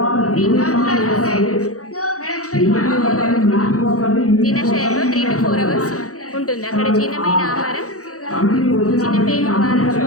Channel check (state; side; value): late; right; 0.65 ms